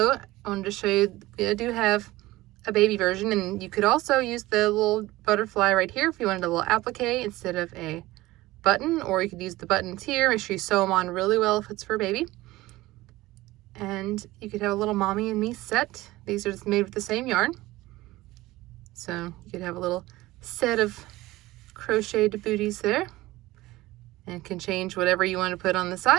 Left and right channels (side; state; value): left; quieter; 18.3 dB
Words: I wanted to show you, I do have a baby version, and you could also use the little butterfly right here if you wanted a little applique instead of a button, or you could use the buttons here. Make sure you sew them on really well if it's for a baby. And you could have a little mommy and me set. These are just made with the same yarn. So you could have a little set of crocheted booties there, and can change whatever you want to put on the